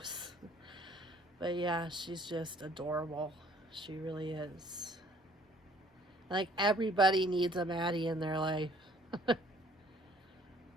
But yeah, she's just adorable. She really is. Like, everybody needs a Maddie in their life. Because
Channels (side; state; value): both; normal; correlation 0.58